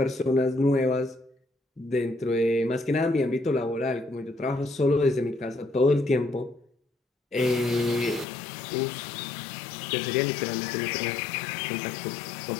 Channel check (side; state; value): right; drops out; at 8.2 s